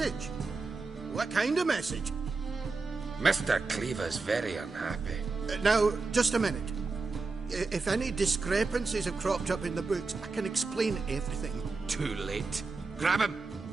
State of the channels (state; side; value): quieter; left; 4.0 dB